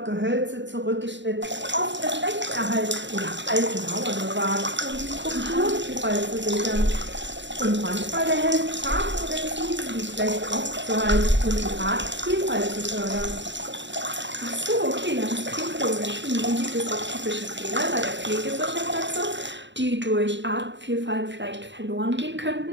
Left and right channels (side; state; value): left; late; 0.53 ms